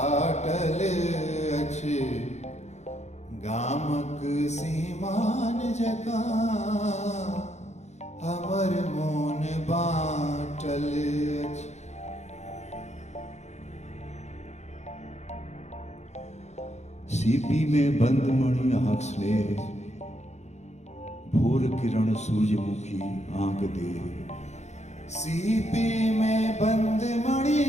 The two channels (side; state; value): right; late; 0.33 ms